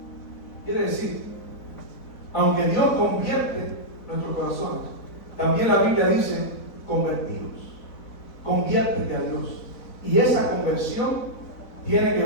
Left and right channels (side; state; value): right; late; 4.0 ms